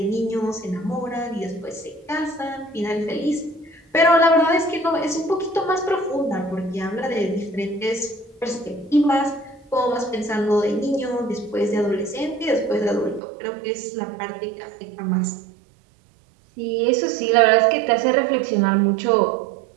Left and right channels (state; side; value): drops out; left; at 13.2 s